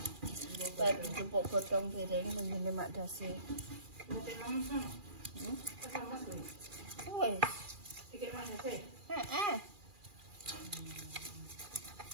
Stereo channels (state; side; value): late; left; 2.4 ms